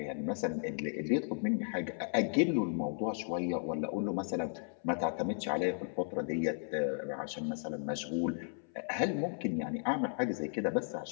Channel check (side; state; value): right; silent; 54 dB below the other